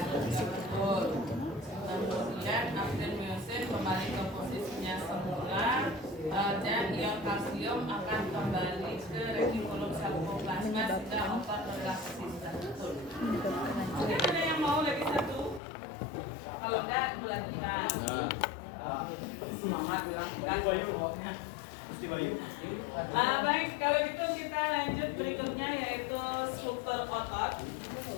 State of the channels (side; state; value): right; drops out; at 15.6 s